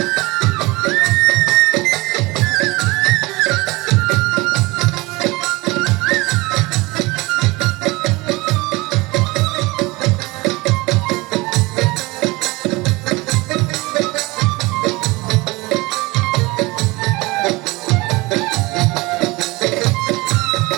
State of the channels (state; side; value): quieter; left; 23.0 dB